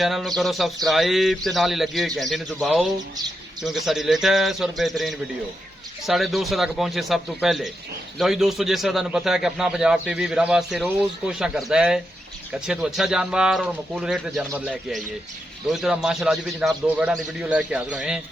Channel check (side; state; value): both; normal; correlation 0.85